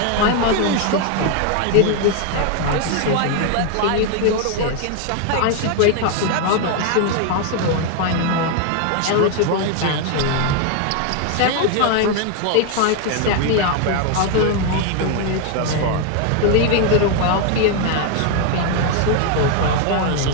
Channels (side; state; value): both; different; correlation 0.01